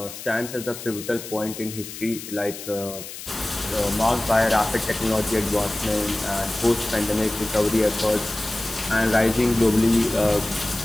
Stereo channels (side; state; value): left; noise; hiss, 11 dB below the sound